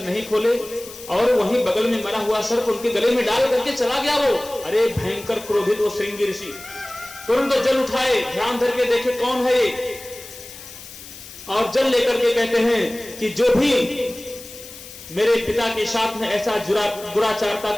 नहीं खोले, और वहीं बगल में मरा हुआ सर्प उनके गले में डाल करके चला गया वो। अरे भयंकर क्रोधित वो श्रृंगी ऋषि तुरंत जल उठाए, ध्यान धर के देखे कौन है ये, और जल लेकर के कहते हैं कि जो भी मेरे पिता के साथ में ऐसा दुराचारता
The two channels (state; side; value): noise; left; hiss, 16 dB below the sound